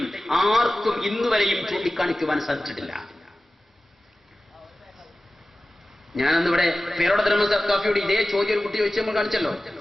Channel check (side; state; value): both; normal; correlation 0.96